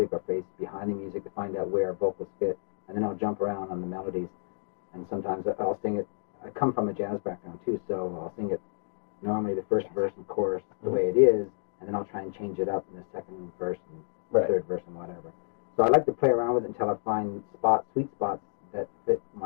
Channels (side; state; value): right; silent; digital silence